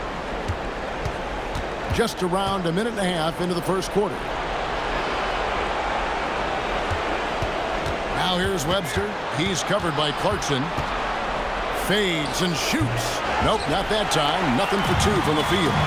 Just around a minute and a half into the first quarter. Now here's Webster. He's covered by Clarkson. Fades and shoots. Nope, not that time. Nothing for 2 from the field.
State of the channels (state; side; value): identical; both; correlation 1.00